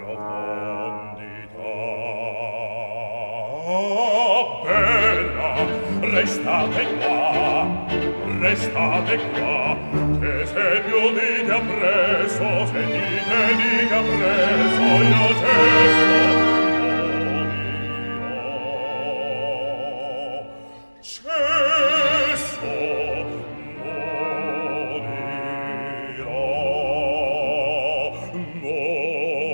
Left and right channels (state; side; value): inverted; both; correlation -1.00